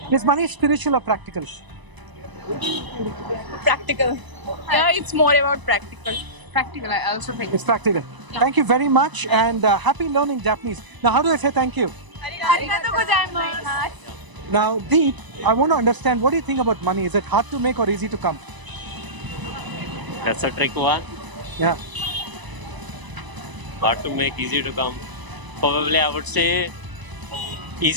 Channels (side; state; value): left; late; 1.0 ms